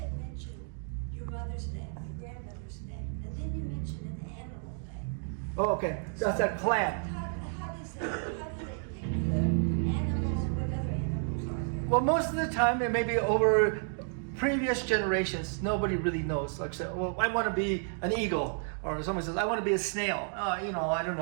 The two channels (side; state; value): left; silent; 57 dB below the other